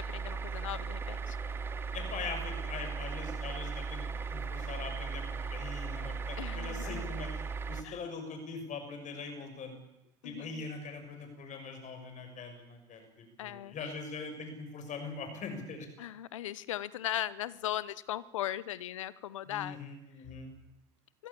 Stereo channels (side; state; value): both; normal; correlation 0.41